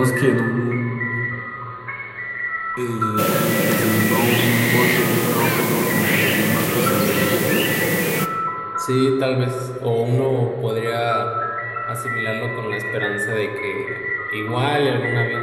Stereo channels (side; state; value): both; identical; correlation 1.00